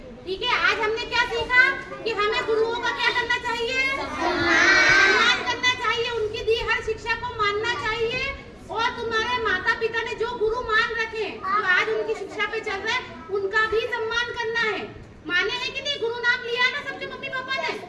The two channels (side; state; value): both; identical; correlation 1.00